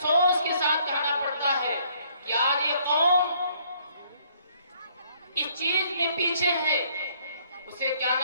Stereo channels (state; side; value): inverted; both; correlation -0.64